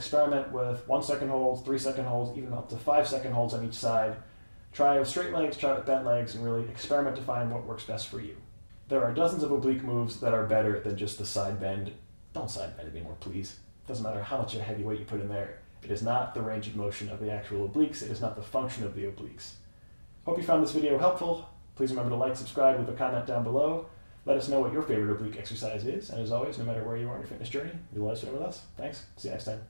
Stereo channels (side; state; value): both; inverted; correlation -1.00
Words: with 1 second holds, 3 second holds, even up to 5 second holds on each side. Try with straight legs, try with bent legs, and really experiment to find what works best for you. There are dozens of oblique moves that are better than just the side bend. Don't side bend anymore, please. Doesn't matter how much of a heavy weight you put in there. It is not the range of motion of the actual obliques. It is not the function of the obliques. Hope you found this video helpful. Please remember to like, subscribe, leave a comment down below. Let us know what your favorite oblique exercise is. And as always, no matter where you are in your fitness journey, you'll let us know with us. Thanks. See you next